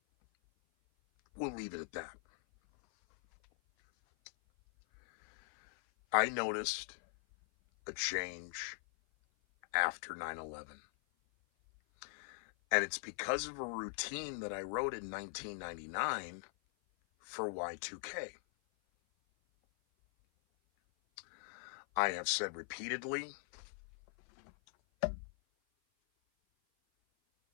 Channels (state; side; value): silent; right; 51 dB below the other